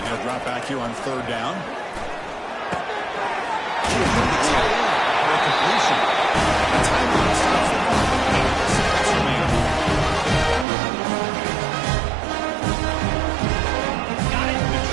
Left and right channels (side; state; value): left; drops out; at 10.7 s